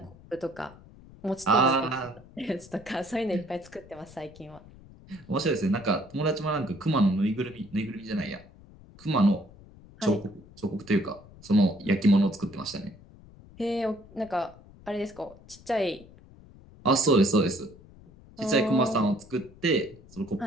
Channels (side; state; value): left; noise; rumble, 22 dB below the sound